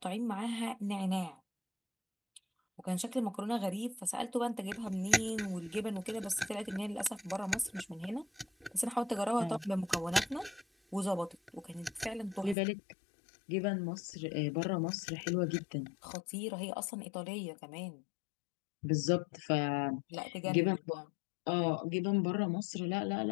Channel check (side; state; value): right; drops out; at 12.6 s